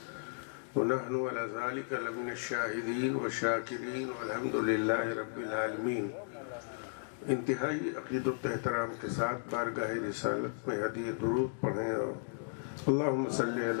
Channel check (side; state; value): right; silent; digital silence